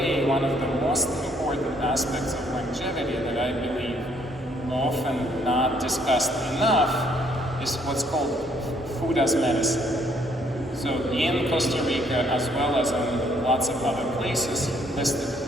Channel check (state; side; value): normal; both; correlation 0.66